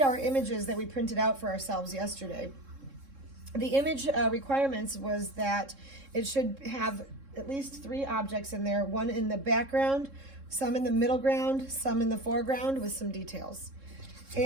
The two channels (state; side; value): late; left; 3.7 ms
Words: our images that we printed out for ourselves yesterday. The image requirements was that it should have at least 3 objects in there, one in the background, some in the middle ground, some in the foreground with some details.